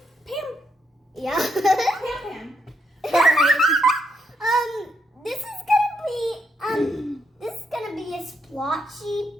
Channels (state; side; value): normal; both; correlation 0.78